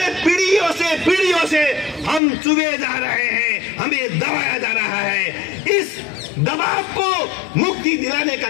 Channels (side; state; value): right; drops out; at 2.2 s